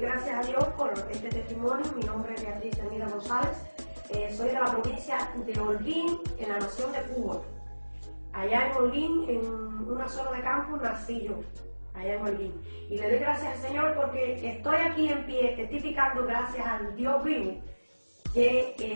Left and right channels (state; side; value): inverted; both; correlation -1.00